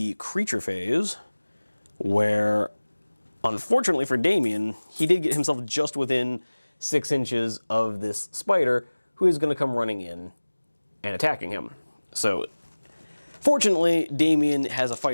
creature phase, where, unfortunately for Damien, he did get himself just within 6 inches of this spider, who is going to come running in and attacking him. So, fortunately, Damien has a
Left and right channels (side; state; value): both; inverted; correlation -1.00